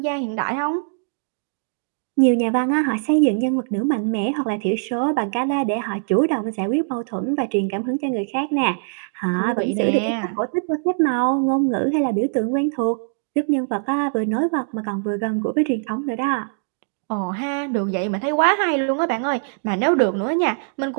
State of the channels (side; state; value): left; silent; digital silence